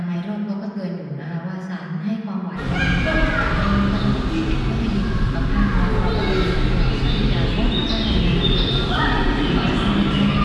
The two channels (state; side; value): identical; both; correlation 1.00